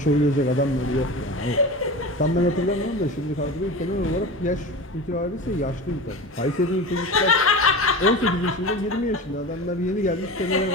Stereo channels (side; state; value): both; normal; correlation 0.30